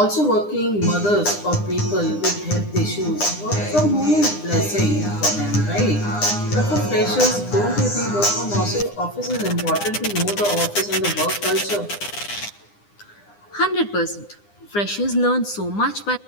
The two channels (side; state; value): right; late; 9.8 ms